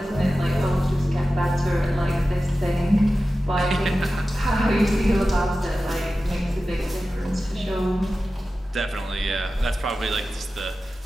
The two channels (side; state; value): both; normal; correlation 0.94